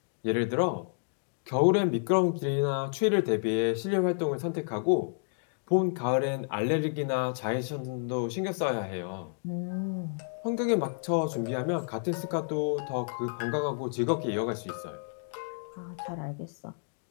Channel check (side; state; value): right; silent; digital silence